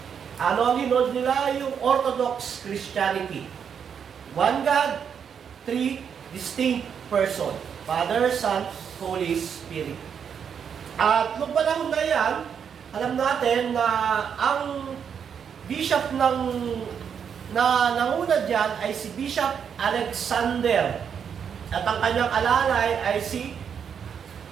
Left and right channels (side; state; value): left; quieter; 7.4 dB